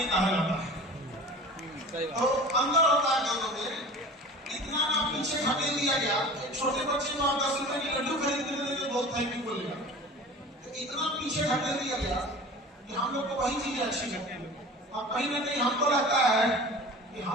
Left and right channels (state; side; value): normal; both; correlation 0.39